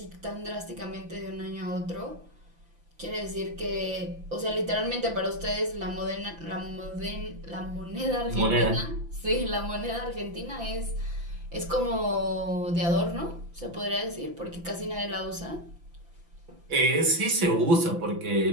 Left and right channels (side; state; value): left; late; 6.0 ms